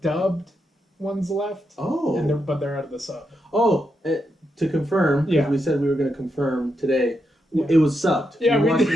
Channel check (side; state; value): both; normal; correlation 0.83